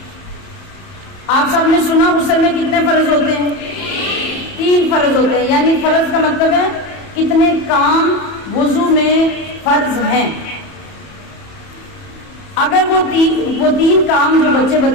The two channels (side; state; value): right; late; 31 ms